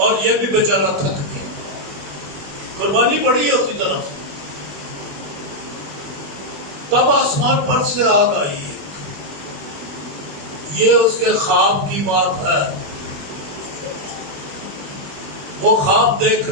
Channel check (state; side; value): late; left; 21 ms